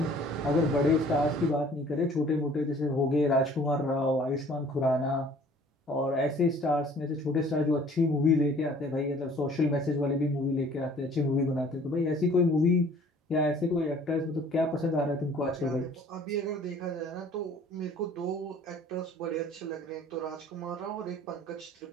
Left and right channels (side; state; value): both; normal; correlation 0.53